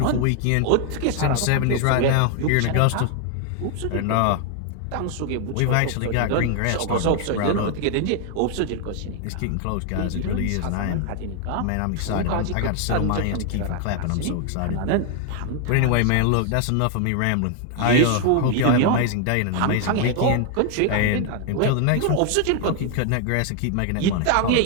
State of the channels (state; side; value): different; both; correlation 0.00